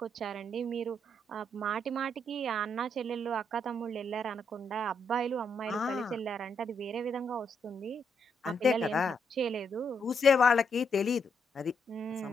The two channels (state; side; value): normal; both; correlation 0.77